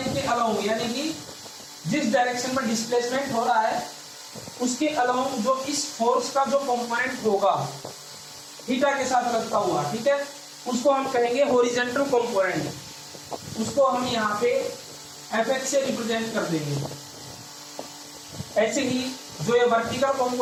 के अलोंग यानी कि जिस डायरेक्शन में डिस्प्लेसमेंट हो रहा है उसके अलोंग जो इस फोर्स का जो कंपोनेंट होगा थीटा के साथ लगता हुआ, ठीक है, उसको हम कहेंगे हॉरिजॉन्टल कंपोनेंट। उसको हम यहाँ पे Fx से रिप्रेजेंट कर देंगे। ऐसे ही जो ये वर्टिकल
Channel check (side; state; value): both; identical; correlation 1.00